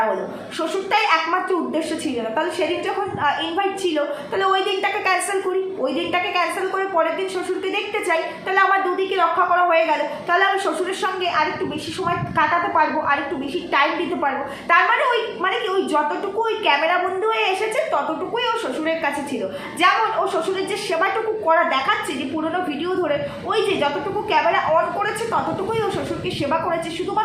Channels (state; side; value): identical; both; correlation 1.00